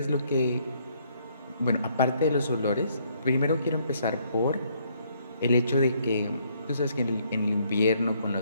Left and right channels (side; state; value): both; inverted; correlation -0.68